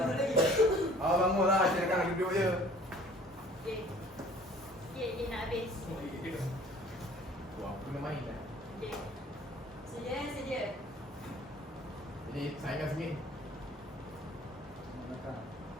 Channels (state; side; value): normal; both; correlation 0.51